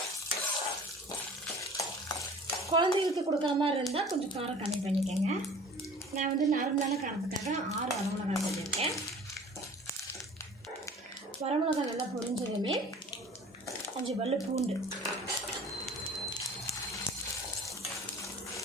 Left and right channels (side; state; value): both; normal; correlation 0.45